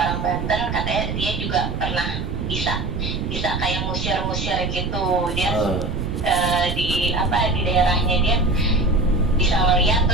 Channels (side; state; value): right; noise; rumble, 4 dB below the sound